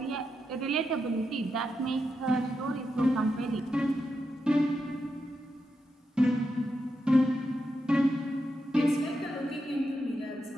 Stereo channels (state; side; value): normal; both; correlation 0.86